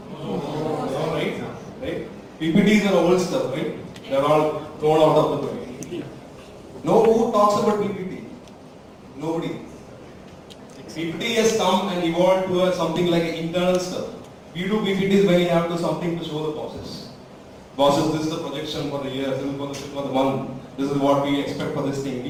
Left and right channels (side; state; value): both; identical; correlation 1.00